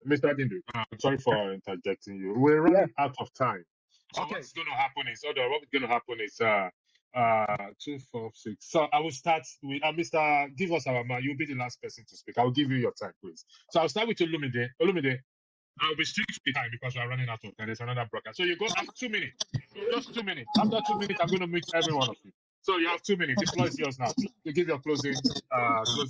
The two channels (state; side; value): identical; both; correlation 1.00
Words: Mr. Dindu, I'm sorry for interjecting you. We're running out of time. So what's going to happen is, what's going to happen is 2, 4, 6. So I will start with Mr. Give us our man. You'll be the last person to speak. I'll give you your time, please. So I'll start with Olumide. Olumide, I'll be strict with time because we're running out of time. There's another broadcast. So you go have 2 minutes. Just 2 minutes. After 2 minutes, I'm going to mute every one of you. So you have 2 minutes. The floor is yours now. You give your closing